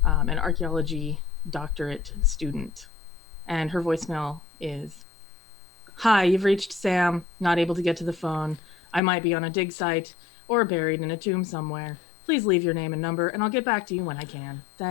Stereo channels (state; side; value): drops out; right; at 9.0 s